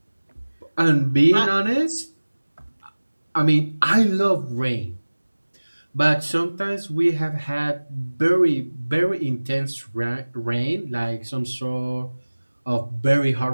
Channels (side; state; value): both; inverted; correlation -1.00